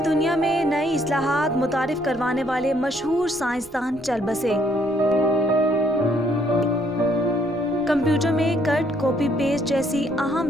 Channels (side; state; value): left; noise; rumble, 25 dB below the sound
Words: दुनिया में नई इस्लाहात मुतारिफ करवाने वाले मशहूर साइंसदान चल बसे। कंप्यूटर में कट कॉपी पेस्ट जैसी